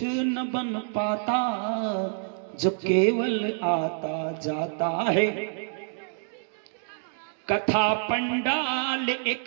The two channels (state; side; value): silent; left; digital silence